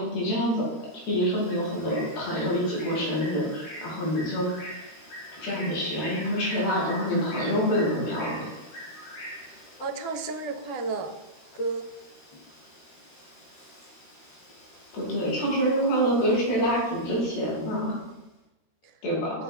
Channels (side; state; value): right; late; 13 ms